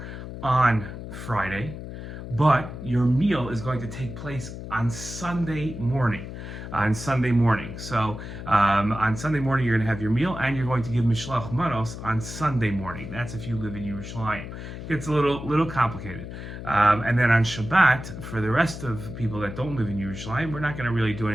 on Friday. But your meal is going to take place on Sunday morning. So on Sunday morning, you're going to have your meal, and you're going to give Mishloach Manos on Sunday morning. That's if you live in Yerushalayim. It gets a little complicated. And then on Shabbat, for the rest of people that don't live in Yerushalayim, we're not going to really do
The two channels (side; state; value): left; noise; hum, 10 dB below the sound